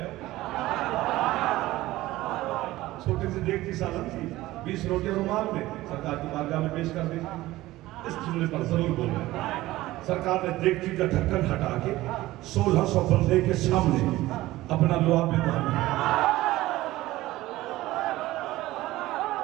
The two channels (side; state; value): left; quieter; 17.1 dB